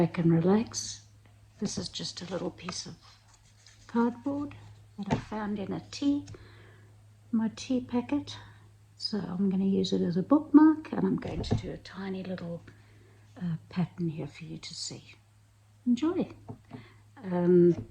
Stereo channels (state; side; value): identical; both; correlation 1.00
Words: and relax. This is just a little piece of cardboard that I found in my tea packet, so I'm going to use it as a bookmark, and I'm going to do a tiny little pattern here for you to see. Enjoy.